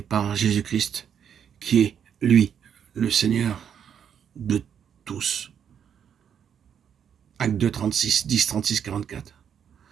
Jésus-Christ, qui est, lui, le Seigneur de tous. Acte 2, 36, 10, 36, 44.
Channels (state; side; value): quieter; left; 8.3 dB